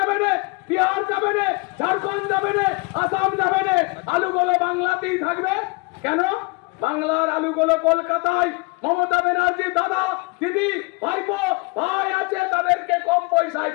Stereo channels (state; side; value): quieter; right; 28.7 dB